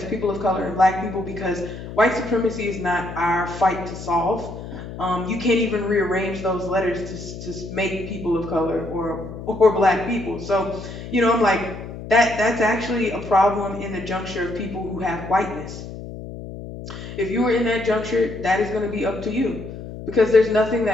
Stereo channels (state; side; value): noise; left; hum, 11 dB below the sound